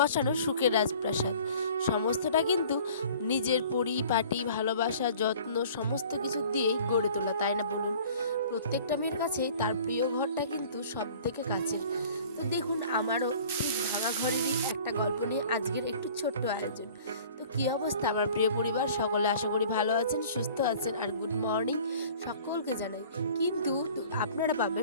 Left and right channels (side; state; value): both; inverted; correlation -0.48